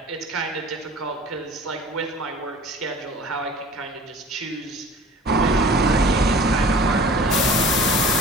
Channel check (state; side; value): normal; both; correlation 0.44